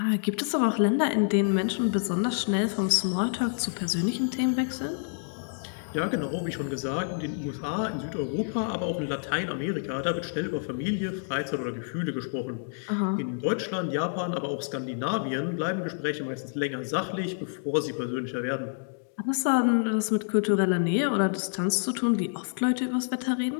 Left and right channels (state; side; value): silent; right; digital silence